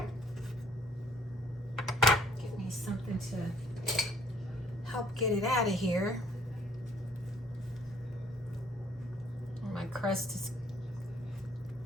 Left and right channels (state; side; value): normal; both; correlation 0.62